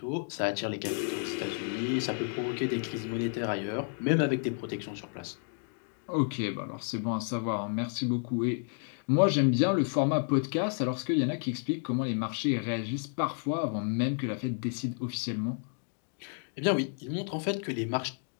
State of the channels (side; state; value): right; silent; 57 dB below the other